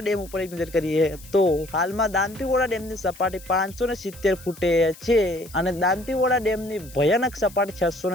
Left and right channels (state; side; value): noise; left; hiss, 20 dB below the sound